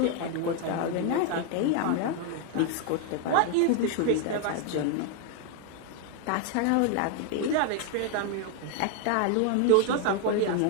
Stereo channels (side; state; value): both; different; correlation 0.00